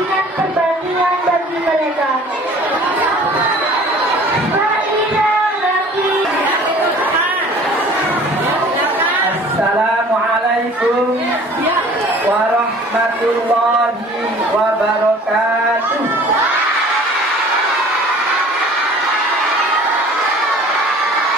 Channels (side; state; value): both; normal; correlation 0.48